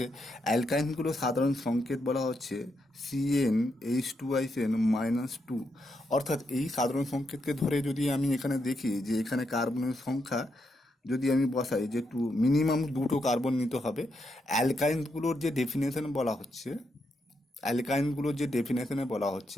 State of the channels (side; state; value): both; normal; correlation 0.81